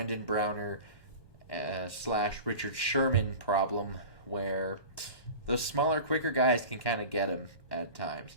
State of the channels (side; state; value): right; late; 1.2 ms